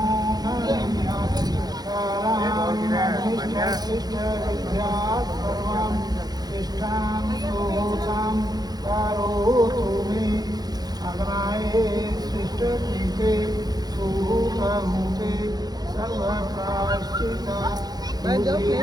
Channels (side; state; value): left; late; 0.19 ms